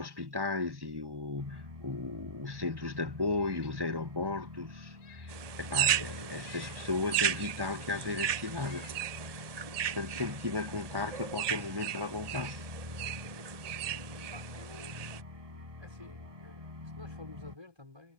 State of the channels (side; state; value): left; late; 1.2 ms